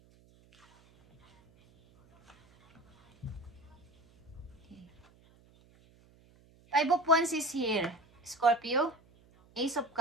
Okay. Five of Wands is here. Scorpio, Ace of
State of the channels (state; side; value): noise; right; hum, 29 dB below the sound